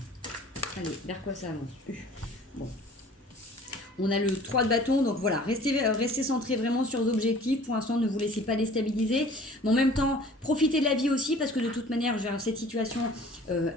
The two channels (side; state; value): both; normal; correlation 0.48